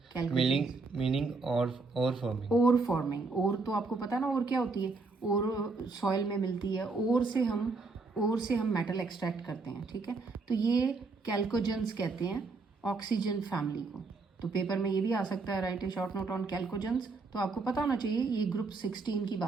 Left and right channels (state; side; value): quieter; left; 4.0 dB